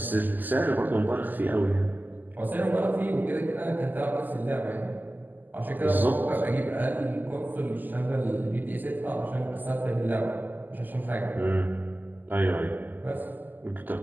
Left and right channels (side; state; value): left; late; 0.086 ms